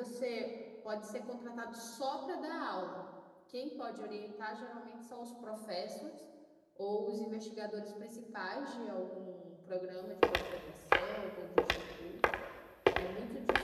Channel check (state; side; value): identical; both; correlation 1.00